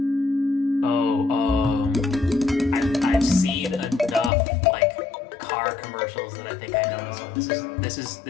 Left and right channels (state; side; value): drops out; right; at 4.3 s